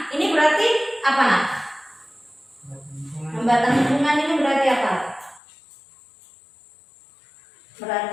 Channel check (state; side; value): drops out; right; at 5.4 s